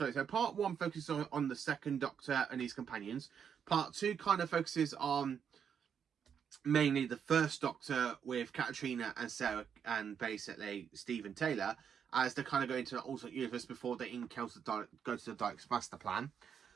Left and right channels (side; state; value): left; quieter; 7.6 dB